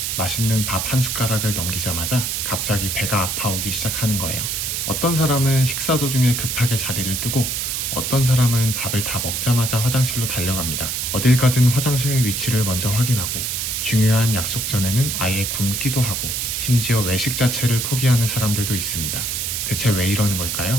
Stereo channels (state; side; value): noise; right; hiss, 1 dB below the sound